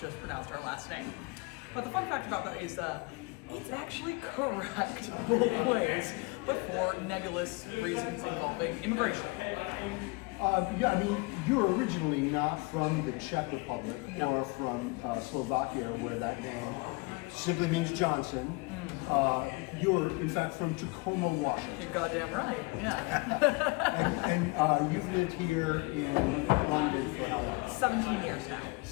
pronounced our last name. But the fun fact about that is it's actually correct both ways, but for nebulous reasons involving immigration. Yeah, I mean, you're originally not from the Czech Republic or from Slovakia, where that name simply means Johnson. You're, in fact, from Tacoma, Washington. You're goddamn right, yeah. And you've lived here in London for how long? 17 years now.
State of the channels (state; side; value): quieter; right; 26.9 dB